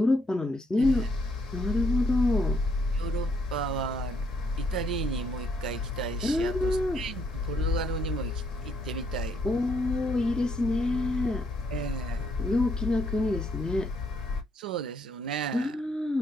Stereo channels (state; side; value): normal; both; correlation 0.72